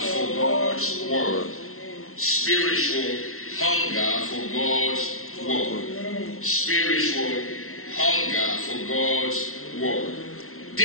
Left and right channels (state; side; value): late; right; 0.62 ms